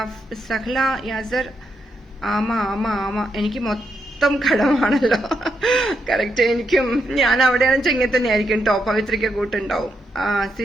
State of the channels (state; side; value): normal; both; correlation 0.81